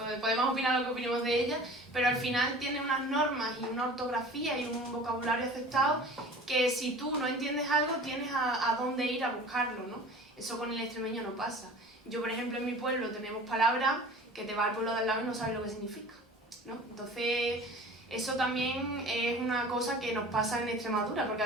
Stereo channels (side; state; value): both; normal; correlation 0.42